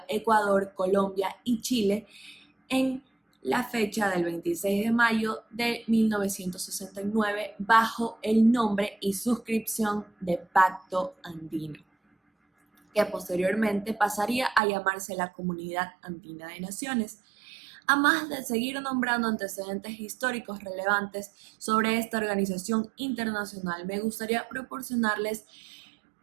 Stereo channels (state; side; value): drops out; left; at 14.6 s